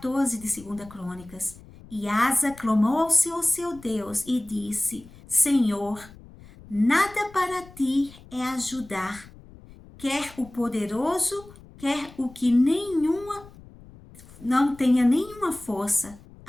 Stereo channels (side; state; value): left; noise; rumble, 21 dB below the sound